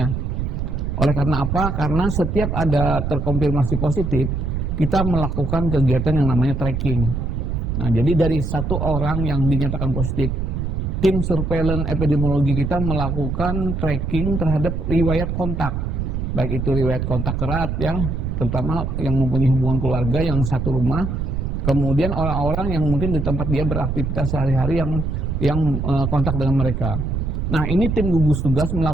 Oleh karena apa? Karena setiap ada terkonfirmasi positif, kita melakukan kegiatan yang namanya tracking. Nah, jadi dari 1 orang yang dinyatakan positif, tim surveillance epidemiologi kita melakukan tracking terhadap riwayat kontak. Baik itu riwayat kontak erat ya, terutama yang mempunyai hubungan keluarga yang satu rumah. Kemudian orang-orang yang mungkin di tempat dia beraktivitas sehari-hari yang kontak dengan mereka. Nah, ini tim gugus tugas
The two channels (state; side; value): noise; right; rumble, 2 dB below the sound